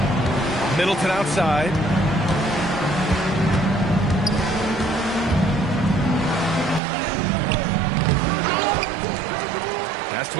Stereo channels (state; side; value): drops out; left; at 6.8 s